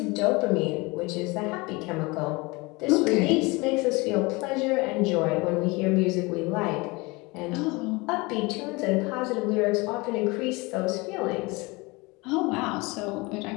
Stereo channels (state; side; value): quieter; right; 24.9 dB